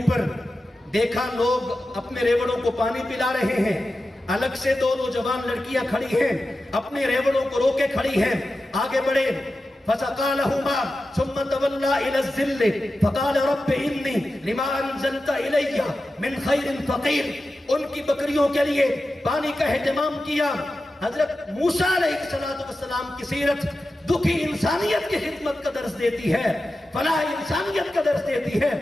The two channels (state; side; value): normal; both; correlation 0.93